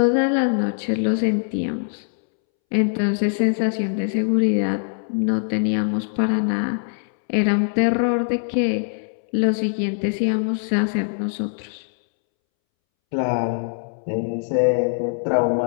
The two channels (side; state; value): right; silent; 64 dB below the other